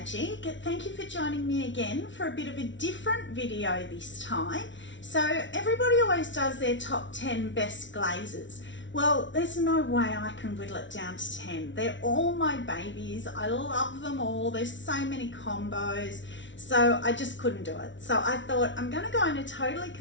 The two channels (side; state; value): right; late; 0.55 ms